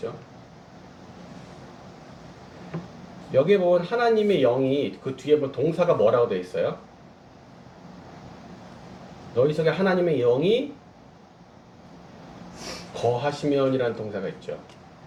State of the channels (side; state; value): both; identical; correlation 1.00